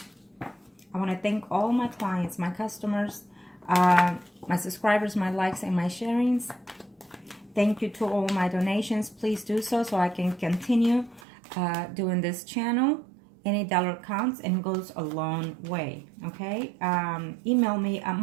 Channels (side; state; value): left; drops out; at 11.2 s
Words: I want to thank all my clients, my customers, my subscribers, my likes, and my sharings. Thank you to all my donations. Please do so I can continue doing this channel. Any dollar counts and goes a long way, okay? Email me at